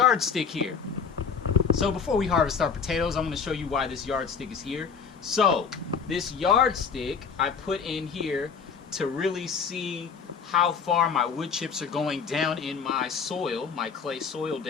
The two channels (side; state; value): right; quieter; 6.2 dB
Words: here. So before we harvest our potatoes, I'm going to show you why this yardstick is here. So, this yardstick I put in here to really see how far my wood chips are going down in my soil, my clay soil